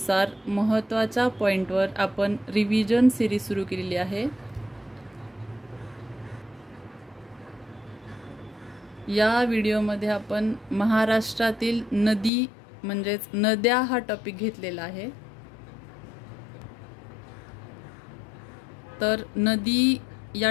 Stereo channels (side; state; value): right; drops out; at 12.3 s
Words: महत्त्वाच्या पॉइंटवर आपण रिव्हिजन सिरीज सुरू केलेली आहे। या व्हिडिओमध्ये आपण महाराष्ट्रातील नदी म्हणजेच नद्या हा टॉपिक घेतलेला आहे। तर नदी या